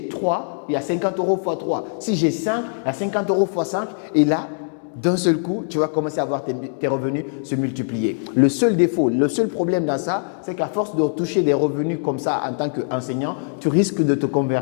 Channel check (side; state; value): right; silent; digital silence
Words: 3, il y a 50 euros x 3. Si j'ai 5, il y a 50 euros x 5. Et là, d'un seul coup, tu vas commencer à voir tes revenus se multiplier. Le seul défaut, le seul problème dans ça, c'est qu'à force de toucher des revenus comme ça en tant qu'enseignant, tu risques de te